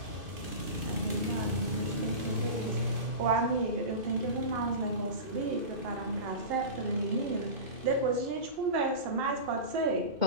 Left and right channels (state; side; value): late; left; 2.5 ms